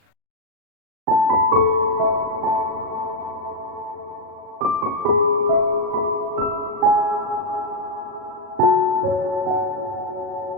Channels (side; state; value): left; late; 40 ms